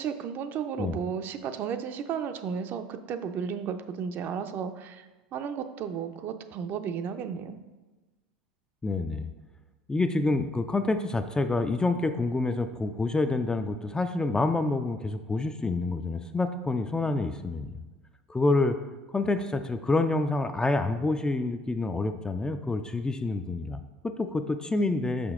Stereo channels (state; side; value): normal; both; correlation 0.74